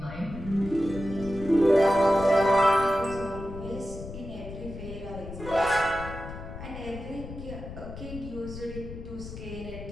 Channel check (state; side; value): noise; left; rumble, 11 dB below the sound